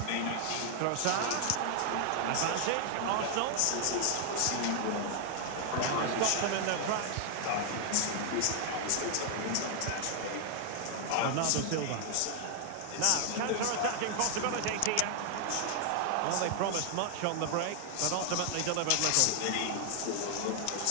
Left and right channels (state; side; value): different; both; correlation 0.00